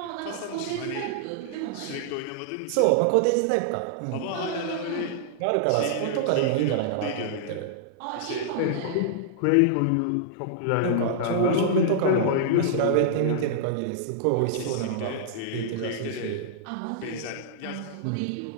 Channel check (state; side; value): different; both; correlation -0.01